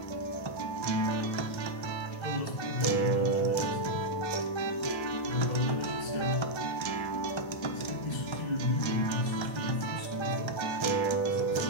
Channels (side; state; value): right; late; 1.3 ms